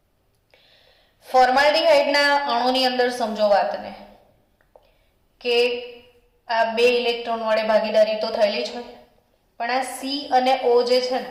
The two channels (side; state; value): both; identical; correlation 1.00